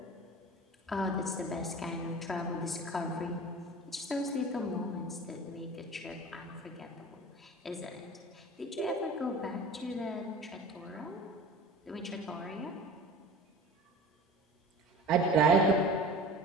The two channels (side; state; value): both; normal; correlation 0.38